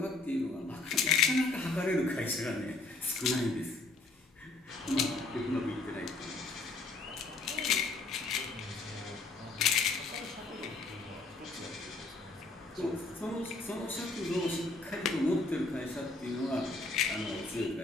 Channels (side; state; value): right; quieter; 3.4 dB